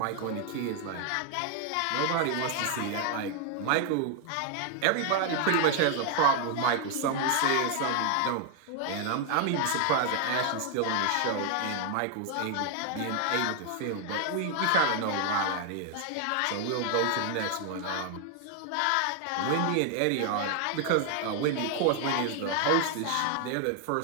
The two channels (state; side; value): different; both; correlation 0.00